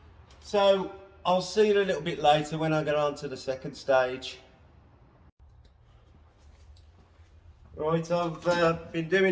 So I'll see you a little bit later when I get on to the second stage. Right, I've been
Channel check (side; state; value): both; identical; correlation 1.00